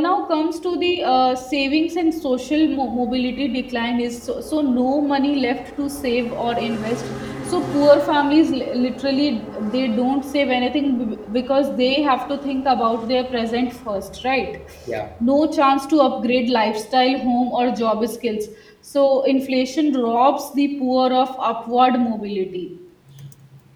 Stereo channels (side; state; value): both; identical; correlation 1.00